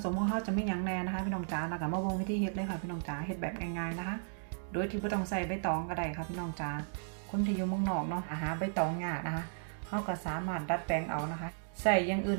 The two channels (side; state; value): left; silent; digital silence